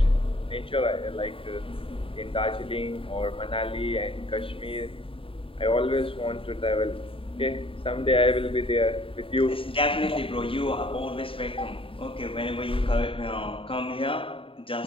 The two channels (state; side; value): late; right; 0.26 ms